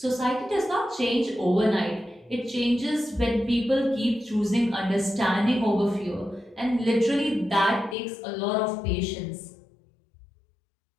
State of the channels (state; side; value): drops out; right; at 8.0 s